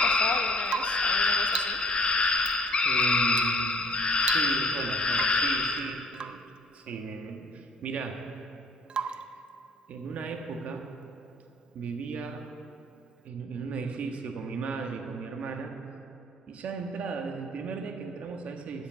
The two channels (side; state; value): both; normal; correlation 0.55